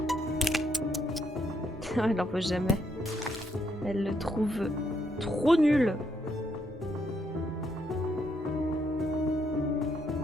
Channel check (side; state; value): both; normal; correlation 0.75